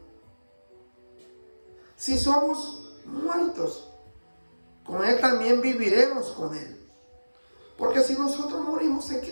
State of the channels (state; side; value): inverted; both; correlation -1.00